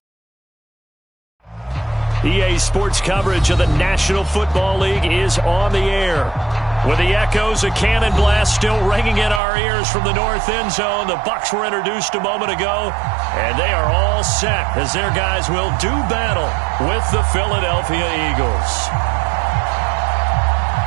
EA Sports coverage of the National Football League is on the air. With the echoes of cannon blast still ringing in our ears from the north end zone, the Bucs were introduced a moment ago, and they are all set as their guys will do battle with the Philadelphia Eagles.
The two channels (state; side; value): drops out; left; at 9.4 s